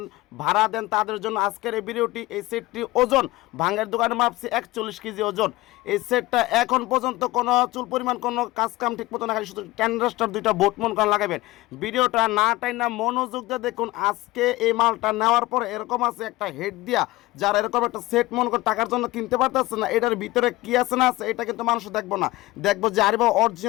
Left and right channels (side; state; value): right; quieter; 19.1 dB